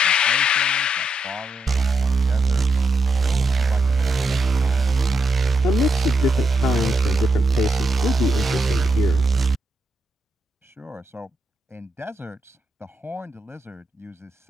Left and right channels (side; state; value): both; normal; correlation 0.82